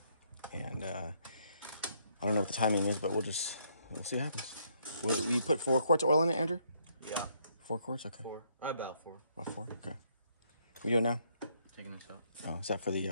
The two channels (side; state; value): both; inverted; correlation -0.71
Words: And I don't know what the timing is, but we'll see what happens. Will you put 4 quarts of oil in it, Andrew? Yeah. 4 quarts? Okay. 4. About 4. About 4? Okay. We do it now? Taking this up. Oh, is that for